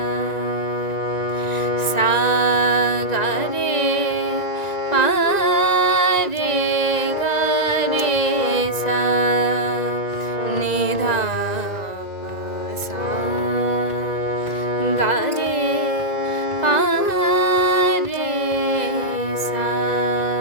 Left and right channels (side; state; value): right; late; 1.9 ms